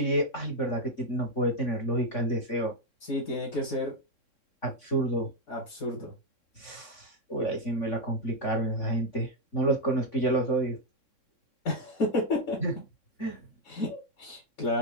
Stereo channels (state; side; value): late; right; 3.6 ms